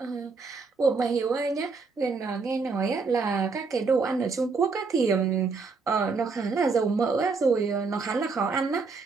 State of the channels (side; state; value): left; quieter; 4.5 dB